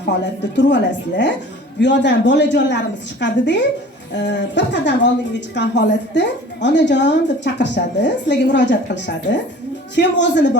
holatda turib olasizlar. Bu yoqdan bolajonlarimiz chiqadi-da, bir qadam oldinga chiqqan holatda onajon deb chaqirishadi, sizlarga murojaat qilishadi. Kim o'zini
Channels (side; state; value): both; normal; correlation 0.45